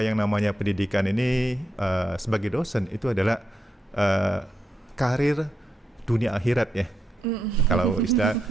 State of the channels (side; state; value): both; normal; correlation 0.83